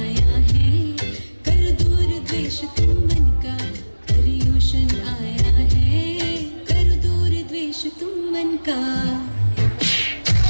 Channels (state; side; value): inverted; both; correlation -1.00